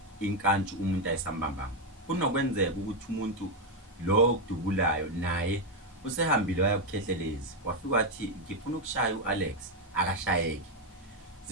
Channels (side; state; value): both; normal; correlation 0.05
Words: inkantshu umuntu ayisambambanga. Kunokwenzeka ukuthi umuntu lo okudubulayo naye usehambile wayakukhehlelezi wafika wathi ngifuna ukushaya uAlex akashayeki.